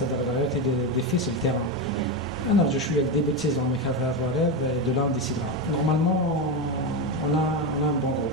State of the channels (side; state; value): both; normal; correlation 0.13